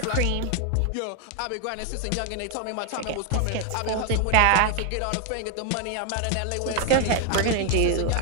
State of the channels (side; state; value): both; different; correlation 0.01